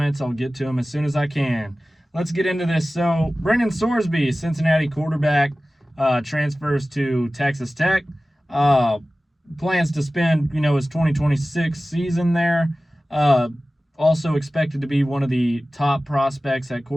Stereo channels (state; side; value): normal; both; correlation 0.97